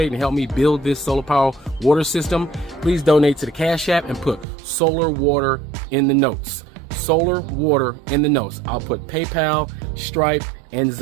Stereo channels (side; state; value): left; drops out; at 4.5 s